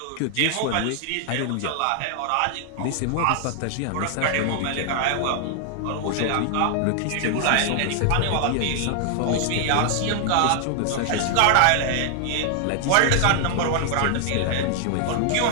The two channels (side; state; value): both; different; correlation 0.00